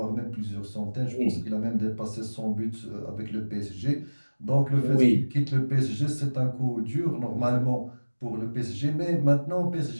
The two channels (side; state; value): both; inverted; correlation -1.00